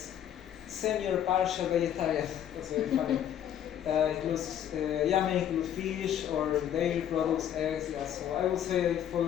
Semi or partial vegetarian, that's very funny. Includes, may include fish or dairy products, eggs. Yeah, so I would say it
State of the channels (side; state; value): right; quieter; 10.1 dB